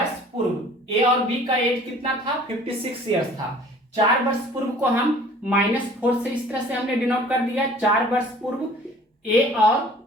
पूर्व ए और बी का एज कितना था, 56 ईयर्स था। 4 वर्ष पूर्व को हम -4 से इस तरह से हमने डिनोट कर दिया। 4 वर्ष पूर्व ए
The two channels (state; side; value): normal; both; correlation 0.50